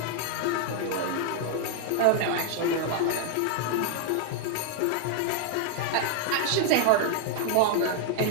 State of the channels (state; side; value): different; both; correlation 0.00